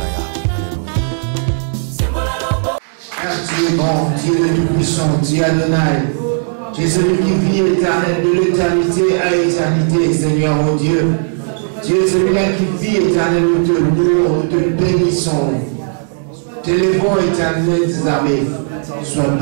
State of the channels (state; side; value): silent; left; digital silence